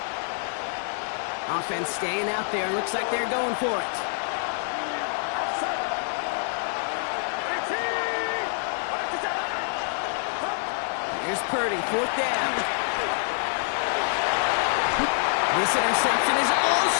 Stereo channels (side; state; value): right; silent; 59 dB below the other